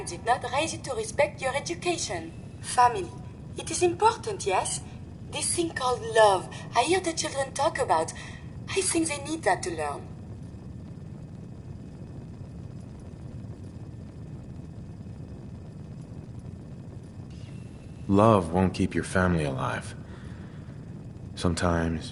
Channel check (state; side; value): identical; both; correlation 1.00